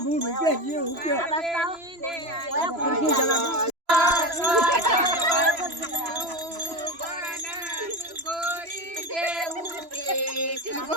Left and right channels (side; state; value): left; late; 3.0 ms